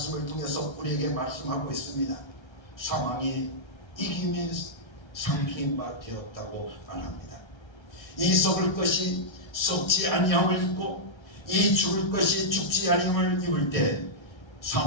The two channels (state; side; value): late; right; 1.3 ms